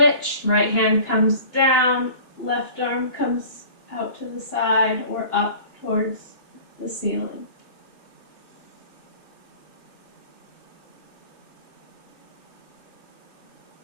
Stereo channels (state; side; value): late; right; 2.9 ms